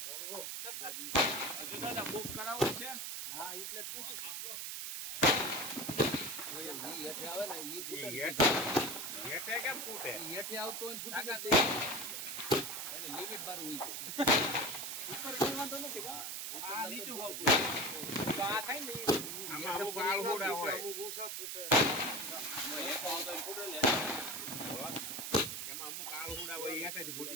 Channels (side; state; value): right; noise; hiss, 4 dB below the sound